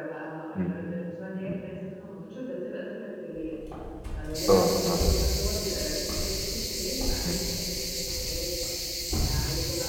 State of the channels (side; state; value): both; identical; correlation 1.00